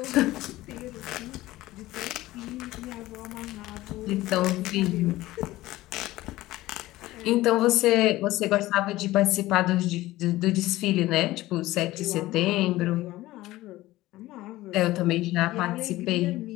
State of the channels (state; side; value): quieter; right; 17.2 dB